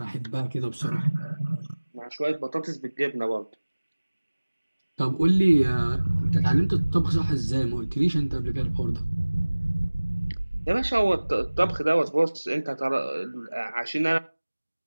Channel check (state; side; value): inverted; both; correlation -1.00